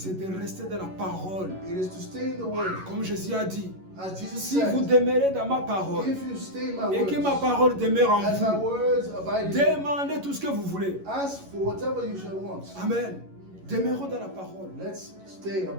de rester dans la parole. It is to stay in the word. Comme Jésus a dit, As Jesus si vous said, demeurez dans ma parole if you stay in my et que ma words, parole demeure en as my vous, words abide in you, demandez tout ce que vous voulez. ask for whatever you shall want. Amen. Demeurons dans la parole. Let's stay,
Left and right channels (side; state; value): left; late; 11 ms